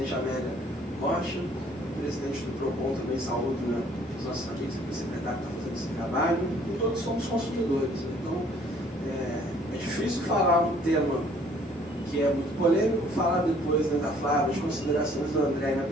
Amélia Rocha, o presidente do PROCON também, saúde, né, os nossos amigos, o secretário que está fazendo esse trabalho, e todos somos consumidores. Então, é difícil falar um tema que é muito polêmico, falar depois, né, da Flávia, as considerações do André na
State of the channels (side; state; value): both; normal; correlation 0.59